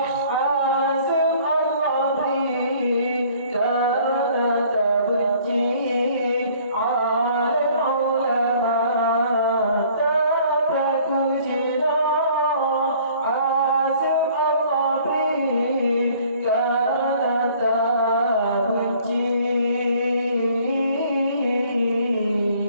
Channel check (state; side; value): inverted; both; correlation -0.56